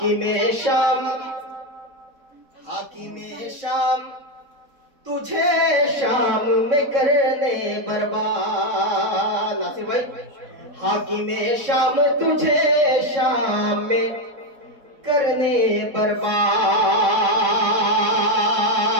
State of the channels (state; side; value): late; left; 4.0 ms